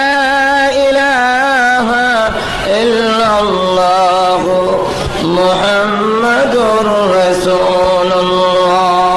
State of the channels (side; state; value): both; identical; correlation 1.00